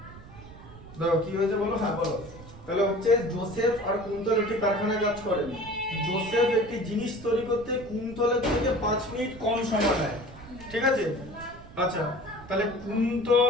দাও কি হয়েছে বলো। হ্যাঁ বলো। তাহলে হচ্ছে জোসেফ আর কুন্তল একটি কারখানায় কাজ করেন। জোসেফ একটি জিনিস তৈরি করতে কুন্তলের থেকে 5 মিনিট কম সময় নেয়। ঠিক আছে। আচ্ছা, তাহলে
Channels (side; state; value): right; noise; rumble, 17 dB below the sound